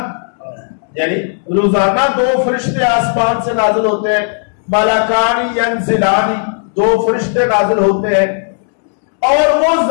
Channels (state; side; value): silent; right; digital silence